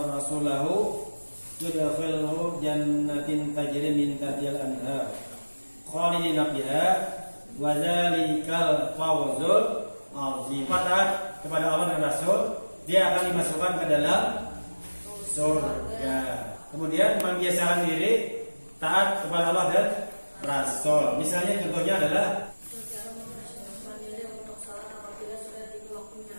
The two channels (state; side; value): inverted; both; correlation -1.00